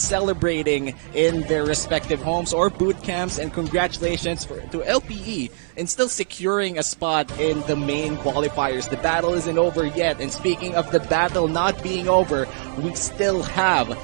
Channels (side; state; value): left; silent; 60 dB below the other